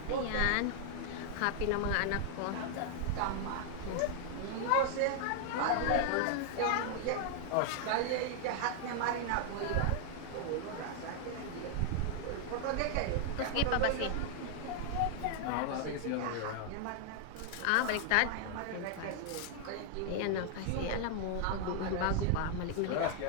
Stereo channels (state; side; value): different; both; correlation 0.00